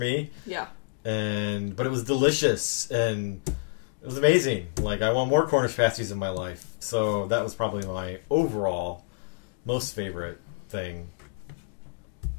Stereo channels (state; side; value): quieter; right; 37.1 dB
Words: Yeah. But it was delicious and it was amazing. Like, I want more Cornish pasties in my life. So that was probably my overall most favorite thing.